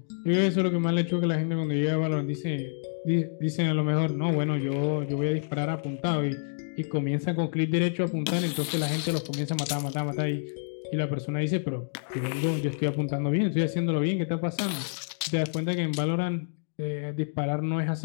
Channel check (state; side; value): silent; right; digital silence